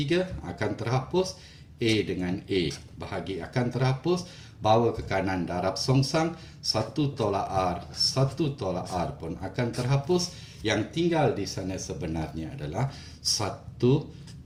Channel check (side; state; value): both; identical; correlation 1.00